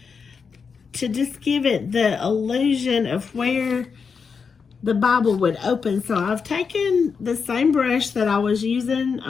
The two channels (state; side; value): quieter; right; 5.7 dB